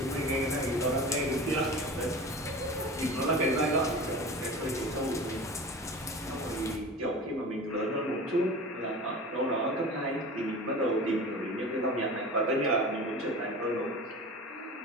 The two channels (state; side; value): normal; both; correlation 0.35